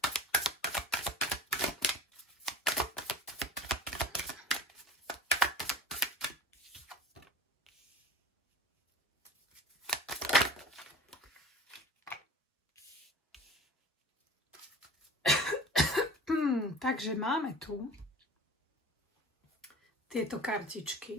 Takže máme tu tieto kartičky.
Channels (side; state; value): both; normal; correlation 0.39